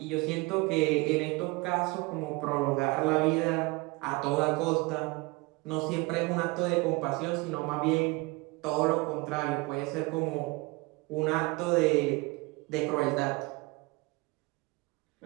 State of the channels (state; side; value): quieter; left; 24.8 dB